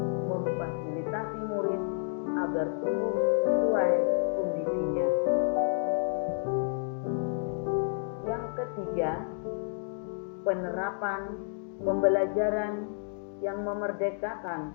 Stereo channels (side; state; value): right; silent; digital silence